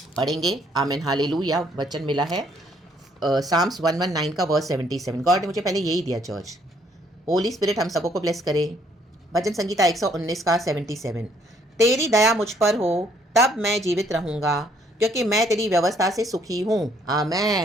पढ़ेंगे. आमीन, हालेलुया. वचन मिला है साम्स 119 का वर्स 77. गॉड ने मुझे पहले यही दिया चर्च. होली स्पिरिट हम सबको ब्लेस करे. भजन संगीता 119 का 77. तेरी दया मुझ पर हो तब मैं जीवित रहूँगा, क्योंकि मैं तेरी व्यवस्था से सुखी हूँ.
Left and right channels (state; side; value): normal; both; correlation 0.66